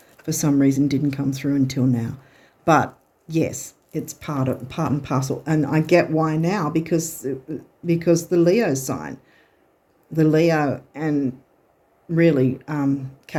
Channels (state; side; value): identical; both; correlation 1.00